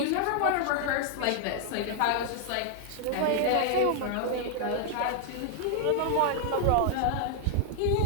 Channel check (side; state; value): both; different; correlation 0.00